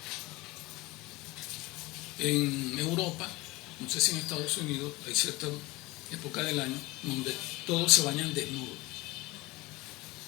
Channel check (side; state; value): right; quieter; 21.5 dB